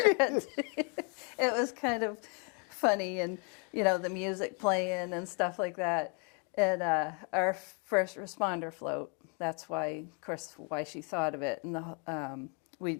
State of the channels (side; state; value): right; quieter; 36.7 dB